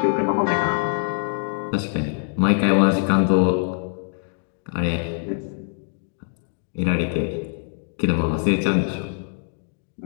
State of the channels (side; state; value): right; silent; 63 dB below the other